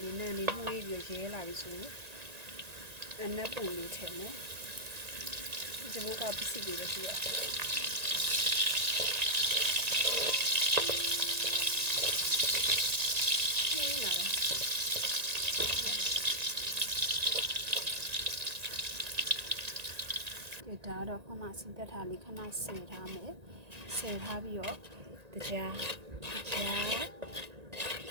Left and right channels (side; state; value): left; late; 1.9 ms